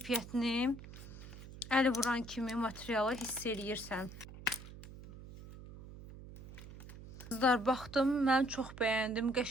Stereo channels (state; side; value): noise; right; hum, 15 dB below the sound